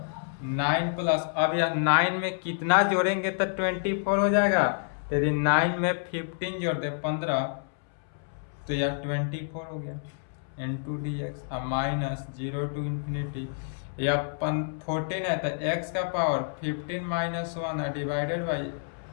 9 प्लस, अब यह 9 में कितना जोड़ेंगे तो 24 हो जाएगा। यदि 9 में 15 जोड़ दे 15 तो यह 24 हो गया इंटू डी एक्स। अब माइनस 0 टू इन्फिनिटी या 14 है तो x का पावर 15 माइनस 1 है डिवाइडेड बाई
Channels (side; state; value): right; silent; 59 dB below the other